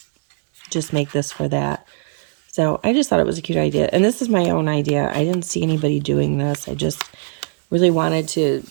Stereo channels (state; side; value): silent; left; 57 dB below the other